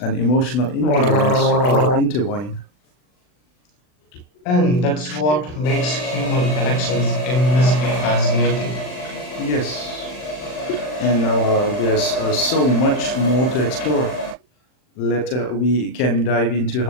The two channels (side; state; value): right; late; 40 ms